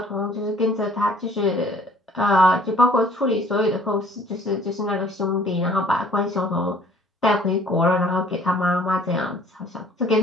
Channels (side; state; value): both; normal; correlation 0.55